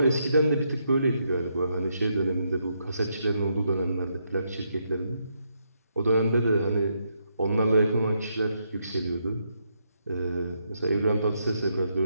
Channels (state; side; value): inverted; both; correlation -0.79